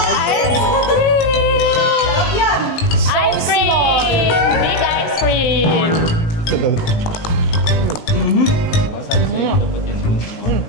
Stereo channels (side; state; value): right; late; 18 ms